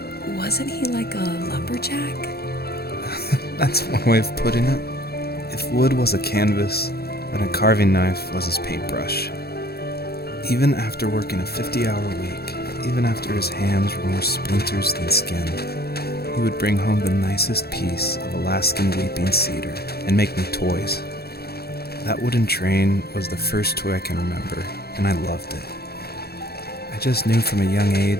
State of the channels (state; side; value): late; right; 0.46 ms